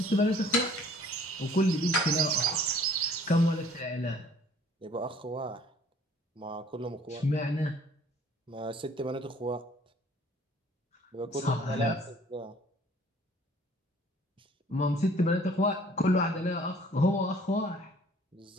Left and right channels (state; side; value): normal; both; correlation 0.55